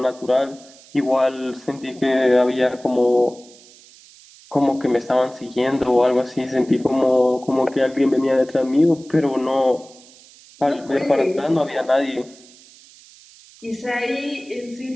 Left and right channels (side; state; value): right; noise; hiss, 24 dB below the sound